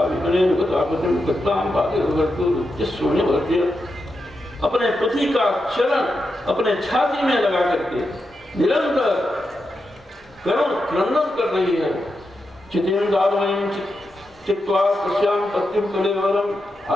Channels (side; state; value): both; normal; correlation 0.87